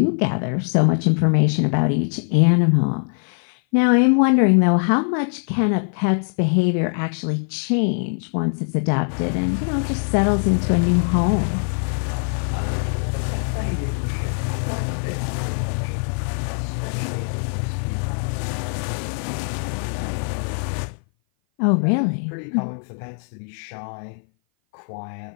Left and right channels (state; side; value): silent; right; 58 dB below the other